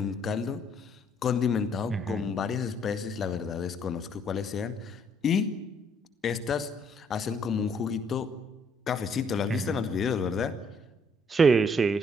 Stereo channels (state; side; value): normal; both; correlation 0.67